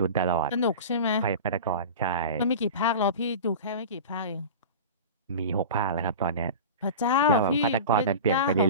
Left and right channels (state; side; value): inverted; both; correlation -0.32